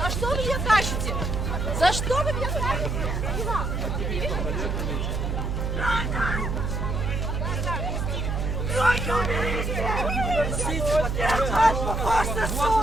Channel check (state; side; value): noise; right; hum, 1 dB below the sound